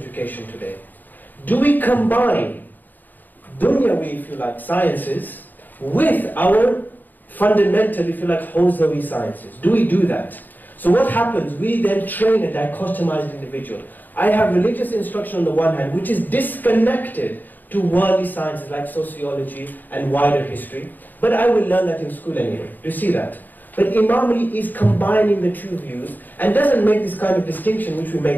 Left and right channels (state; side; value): late; right; 0.088 ms